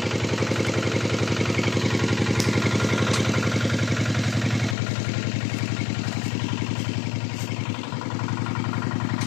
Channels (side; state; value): right; drops out; at 4.8 s